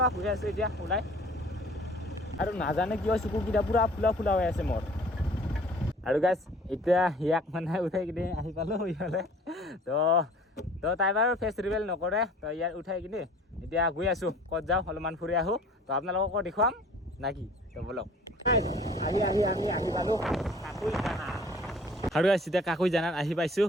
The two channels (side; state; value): both; normal; correlation 0.50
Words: গৈ আছোঁ এতিয়া ওলাই আৰু নাজানে কিয় চকুকেইটা পূৰা ফুলা ফুলা হৈ আছে মোৰ আৰু গাইছ এতিয়া ইয়াক মানে উঠাই কিনে আহি পালোঁ ইফালে তো তাই বাৰু ফেচ ৰিভেল নকৰে তো ইয়াত উঠাই কিনে এতিয়া গৈ আছোঁ ক'ত যাওঁ অলপমান ফুৰি আহোঁ তো আপোনালোককো দেখুৱাম নাকি তো বলক আমি আহি পালোঁ কাকুইজানা আৰু এতিয়া কাকুইজানাত আহি পাইছোঁ